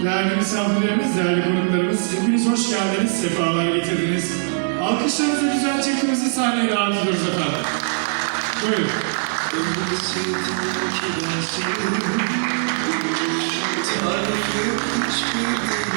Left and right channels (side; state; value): left; silent; 65 dB below the other